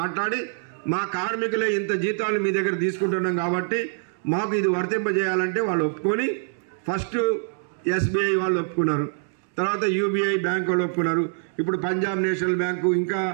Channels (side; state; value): left; silent; digital silence